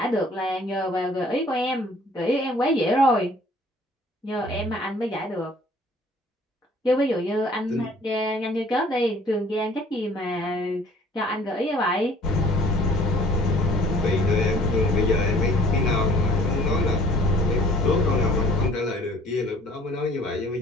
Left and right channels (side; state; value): both; normal; correlation 0.54